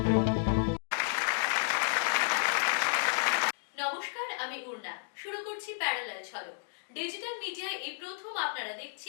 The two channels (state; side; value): silent; right; digital silence